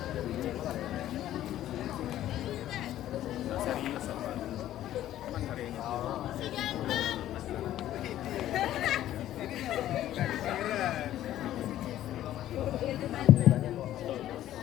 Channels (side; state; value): right; quieter; 12.9 dB